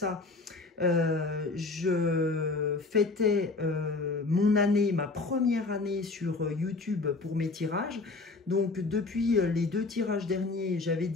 Je fêtais ma première année sur YouTube pour mes tirages. Donc, depuis les 2 tirages derniers, j'avais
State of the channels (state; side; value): quieter; right; 3.6 dB